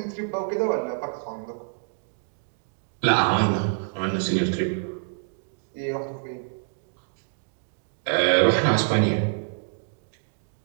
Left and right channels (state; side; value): silent; left; digital silence